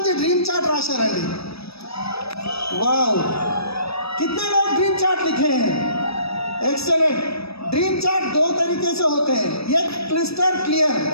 డ్రీమ్ చార్ట్ రాశారండి? वाओ, कितने लोग ड्रीम चार्ट लिखे हैं? एक्सेलेंट. ड्रीम चार्ट 2 तरीके से होते हैं. एक क्रिस्टल क्लियर,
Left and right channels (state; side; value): late; right; 0.78 ms